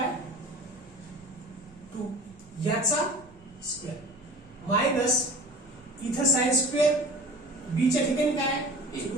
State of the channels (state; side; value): noise; right; rumble, 25 dB below the sound